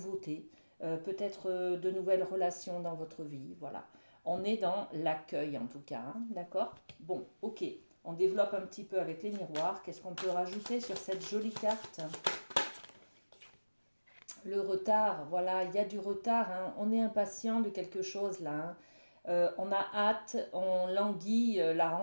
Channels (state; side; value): inverted; both; correlation -1.00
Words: peut-être de nouvelles relations dans votre vie. Voilà. On est dans l'accueil en tout cas, hein, d'accord? Bon, ok. On développe un petit peu avec les miroirs. Qu'est-ce qu'on peut rajouter sur cette jolie carte? Le retard, voilà, il y a du retard, hein. On est impatient de quelque chose là, hein. On a hâte, on languit la